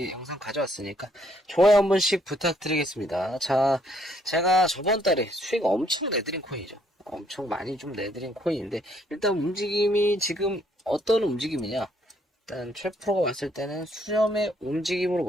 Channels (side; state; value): both; normal; correlation 0.68